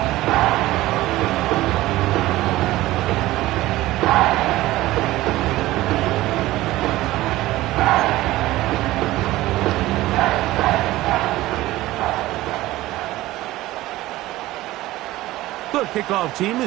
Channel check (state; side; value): quieter; left; 17.0 dB